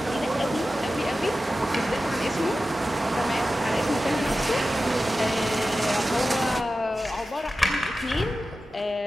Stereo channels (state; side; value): normal; both; correlation 0.94